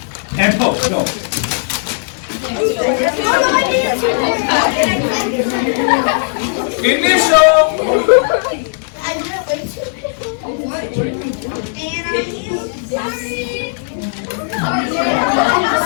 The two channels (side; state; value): right; silent; digital silence